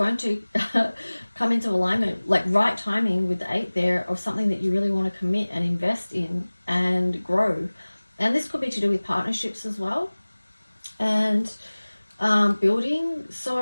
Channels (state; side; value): inverted; both; correlation -1.00